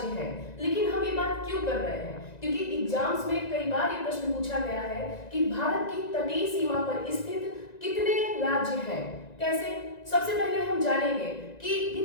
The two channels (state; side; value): late; right; 1.9 ms